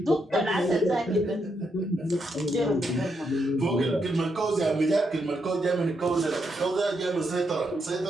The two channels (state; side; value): normal; both; correlation 0.80